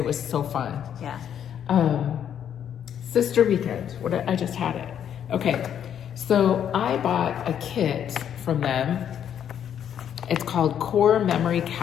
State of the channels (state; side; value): quieter; right; 9.2 dB